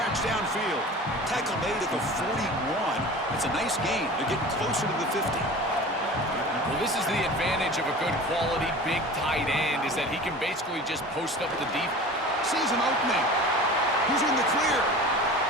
downfield. Tackle made at the 41. It's a nice gain. They're getting closer to the 50. Well, this is the advantage of a good quality big tight end, is that he can basically just post up the deep. Sees an opening. Who's in the clear?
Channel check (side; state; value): both; normal; correlation 0.38